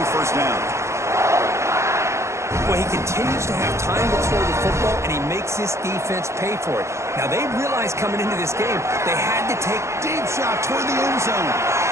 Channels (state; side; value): late; left; 0.14 ms